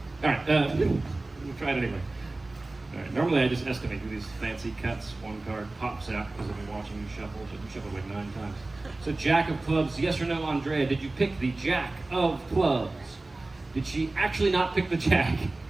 All right. We'll try it anyway. All right. Normally I just estimate, do these fancy cuts. One card pops out because I've been watching you shuffle. So you shuffled like 9 times. So Jack of Clubs, yes or no, Andrea? Did you pick the Jack of Clubs? Did she actually not pick the Jack? No.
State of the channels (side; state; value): left; quieter; 3.0 dB